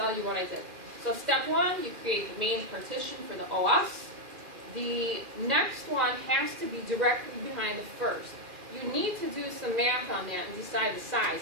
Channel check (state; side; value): late; left; 2.4 ms